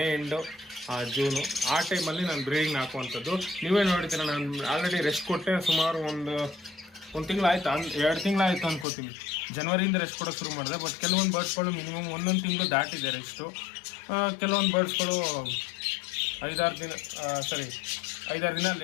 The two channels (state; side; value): drops out; right; at 8.8 s